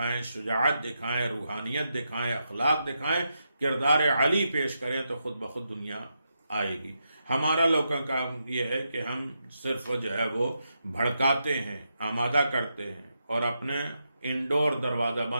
شجاعت دکھائیں، روحانیت دکھائیں، اخلاق دکھائیں، کردار علی پیش کریں، تو خود بخود دنیا آئے گی. ہمارا لوگوں کا کام یہ ہے کہ ہم صرف جو ہے وہ بھڑکاتے ہیں، آمادہ کرتے ہیں، اور اپنے انڈور دروازہ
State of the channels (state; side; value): inverted; both; correlation -0.85